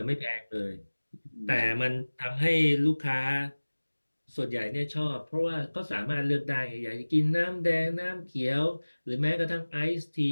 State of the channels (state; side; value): inverted; both; correlation -1.00